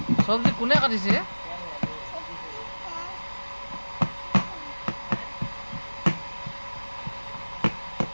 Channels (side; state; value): both; inverted; correlation -1.00